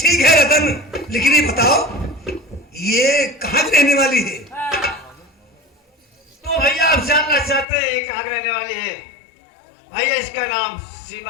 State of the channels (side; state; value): right; drops out; at 7.7 s